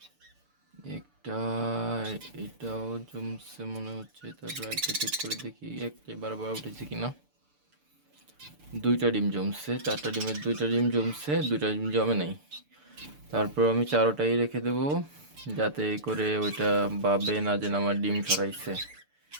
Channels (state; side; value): late; left; 6.8 ms